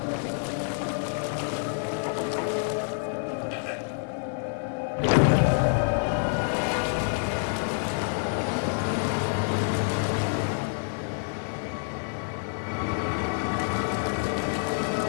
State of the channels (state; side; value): silent; right; 60 dB below the other